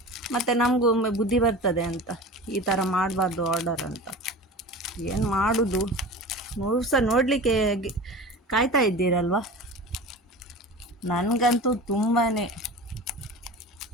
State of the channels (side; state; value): both; normal; correlation 0.35